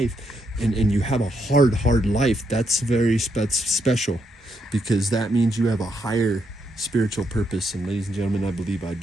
and you have a hard life, that's very special, because that means you have a higher spiritual purpose. And ladies and gentlemen, I believe I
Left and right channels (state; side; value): normal; both; correlation 0.78